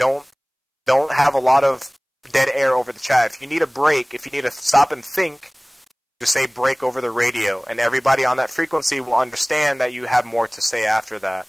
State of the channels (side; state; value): both; identical; correlation 1.00